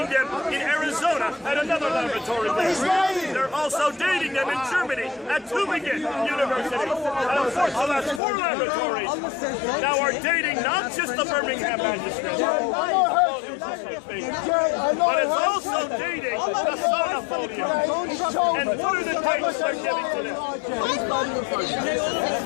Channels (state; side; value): drops out; right; at 8.2 s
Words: them in Arizona at another laboratory there. They're also dating them in Germany at Tübingen University. And of course, the last 4 laboratories now are dating not just the Birmingham manuscripts, but it's also dating the Sauna folios. And what are the dates they're giving to them?